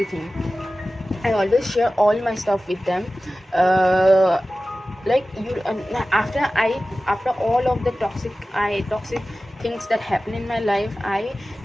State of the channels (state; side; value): normal; both; correlation 0.96